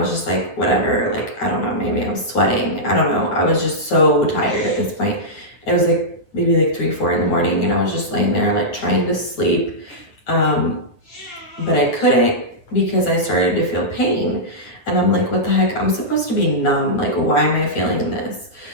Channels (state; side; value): late; right; 9.6 ms